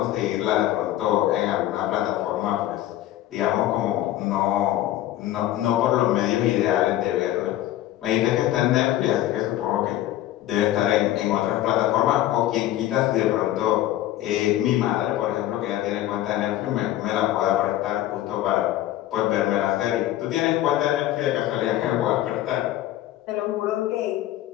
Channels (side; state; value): right; quieter; 13.8 dB